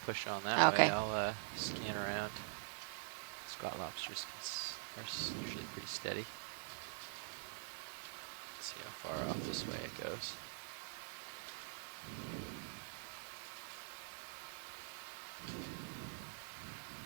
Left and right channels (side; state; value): left; silent; digital silence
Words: on that way, Okay. I'll scan around. Squat lobsters are usually pretty steady. Let's see how far off this way it goes.